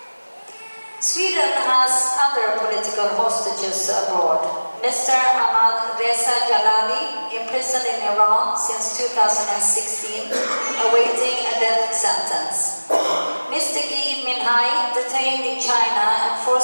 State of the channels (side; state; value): both; inverted; correlation -1.00